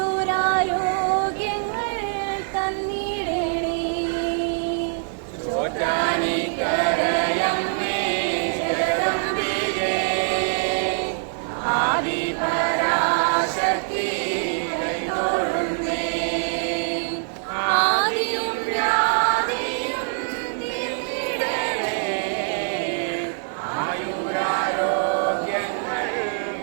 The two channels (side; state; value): left; silent; digital silence